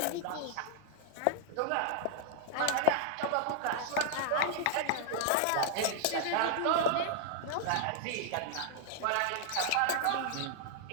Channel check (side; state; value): both; different; correlation -0.01